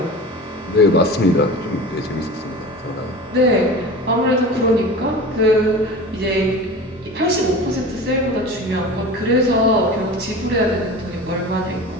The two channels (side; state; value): both; normal; correlation 0.34